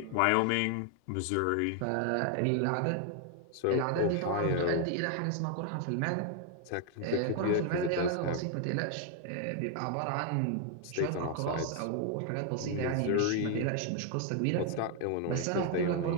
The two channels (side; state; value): both; different; correlation 0.00